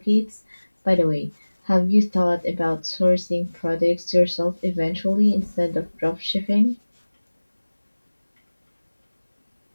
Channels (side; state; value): both; inverted; correlation -1.00